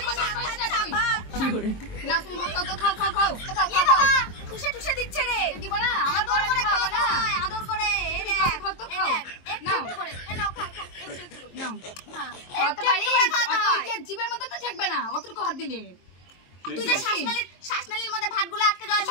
কথা কইছ না তুই। কি করে না তুমি ভাত খাও তো খাও খাও খাও। খাও খাও। ঠুসে ঠুসে দিচ্ছে রে। দিব না? আমার বর করে খাওয়া না। আদর করে। এই রে খাও তো খাও। একটু করে। এই নাও খাও খাও। একটু করে। নাও। হ্যাঁ। খাওয়াতে পারি। অত যে জীবের মধ্যে তো থাকবে না। অতটুকু হাত দিলে। তুই যে শ্বাসনালীর মধ্যে ভাতগুলো আটকে যায়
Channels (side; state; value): right; late; 23 ms